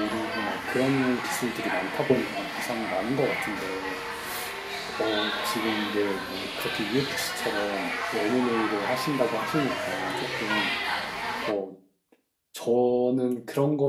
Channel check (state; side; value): identical; both; correlation 1.00